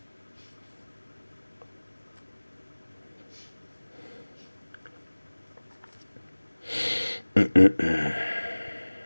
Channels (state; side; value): inverted; both; correlation -1.00